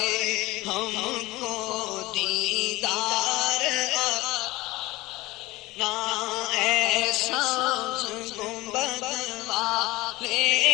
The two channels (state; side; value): quieter; right; 19.9 dB